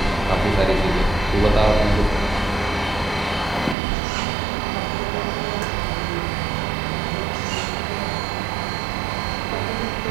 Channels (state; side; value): drops out; left; at 3.8 s